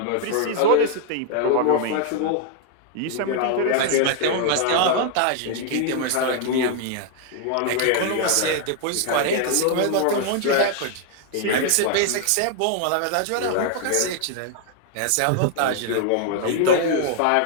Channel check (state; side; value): different; both; correlation 0.00